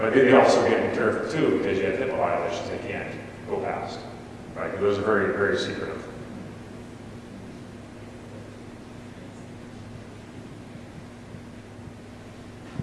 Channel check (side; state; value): both; identical; correlation 1.00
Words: But they also get to be careful too, because you have HIPAA violations they can't go past, right? Because those are very, very secretive.